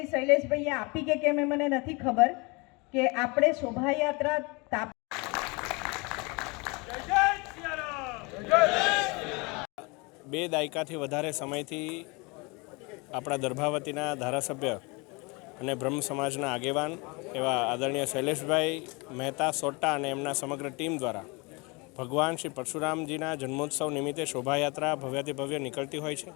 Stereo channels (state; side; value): quieter; right; 28.0 dB